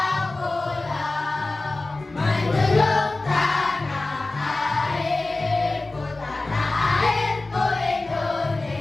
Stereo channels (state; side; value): quieter; right; 3.1 dB